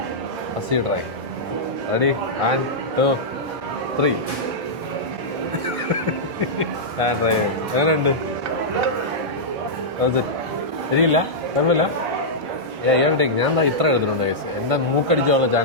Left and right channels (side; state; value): both; normal; correlation -0.11